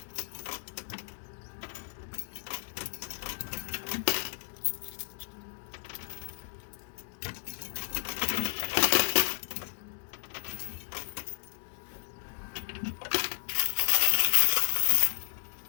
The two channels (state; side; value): silent; right; digital silence